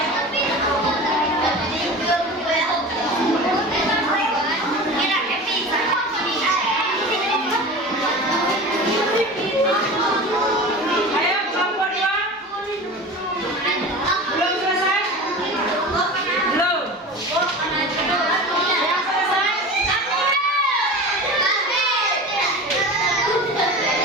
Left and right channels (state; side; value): normal; both; correlation 0.33